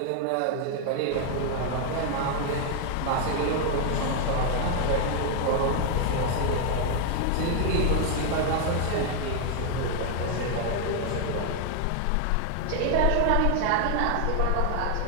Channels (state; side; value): different; both; correlation 0.00